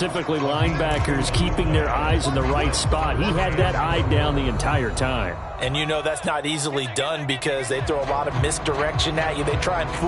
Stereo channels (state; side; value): identical; both; correlation 1.00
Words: linebackers, keeping their eyes in the right spot, he had that eye down the entire time. And you know that's not easily done because they throw a lot of misdirection at you. They try and